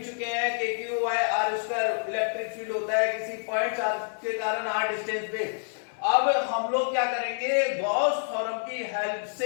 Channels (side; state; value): right; silent; 60 dB below the other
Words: चुके हैं कि Q by R square electric field होता है किसी पॉइंट चार्ज के कारण आर डिस्टेंस पे। अब हम लोग क्या करेंगे, गॉस थ्योरम की हेल्प